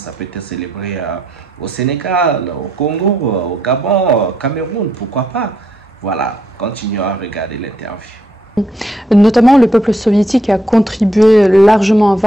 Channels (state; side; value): normal; both; correlation 0.76